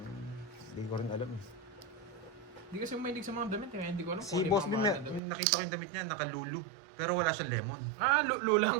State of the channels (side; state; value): left; drops out; at 5.2 s